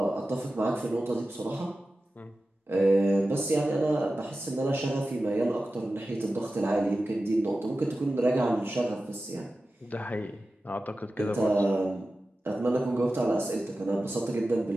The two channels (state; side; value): normal; both; correlation 0.94